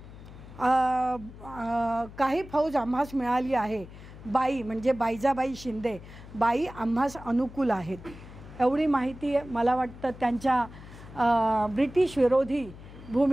काही फौज आम्हास मिळाली आहे. बाई म्हणजे बायजाबाई शिंदे, बाई आम्हास अनुकूल आहेत. एवढी माहिती मला वाटतं त्यांच्या ब्रिटिश विरोधी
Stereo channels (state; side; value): noise; left; hum, 17 dB below the sound